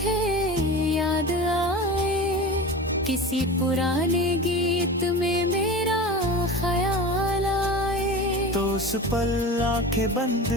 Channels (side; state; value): both; normal; correlation 0.31